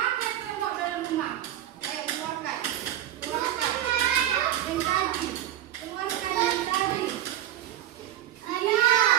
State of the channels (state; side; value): quieter; left; 12.3 dB